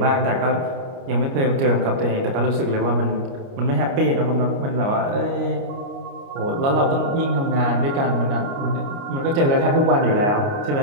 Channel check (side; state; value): left; late; 29 ms